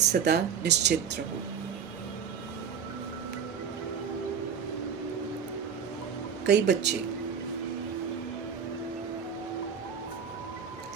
निश्चित रहो। कई बच्चे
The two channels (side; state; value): left; quieter; 7.1 dB